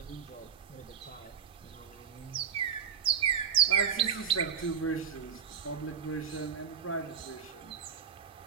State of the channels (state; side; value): quieter; left; 7.7 dB